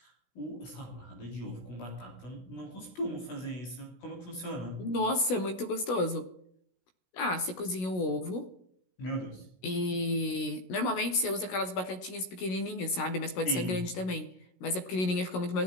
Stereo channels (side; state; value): right; late; 16 ms